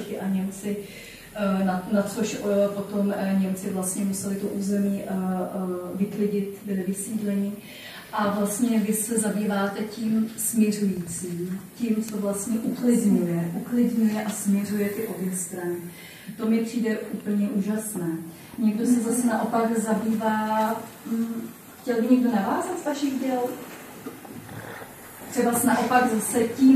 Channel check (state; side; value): identical; both; correlation 1.00